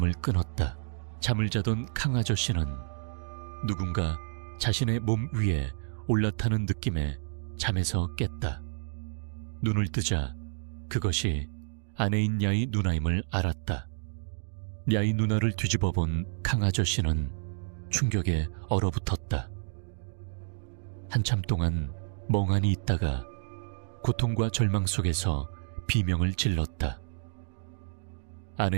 끊었다. 잠을 자던 강 아저씨는 누군가 자신의 몸 위에 올라타는 느낌에 잠에서 깼다. 눈을 뜨자 그것이 아내인 야의 누나임을 알았다. 야의 누나를 뒤집어 본 강 아저씨는 충격에 얼어붙었다. 한참 동안 멍하니 있다가 고통과 절망 속에서 비명을 질렀다.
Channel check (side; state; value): left; silent; digital silence